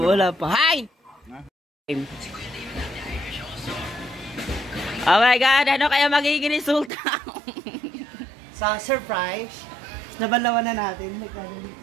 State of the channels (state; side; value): drops out; left; at 6.9 s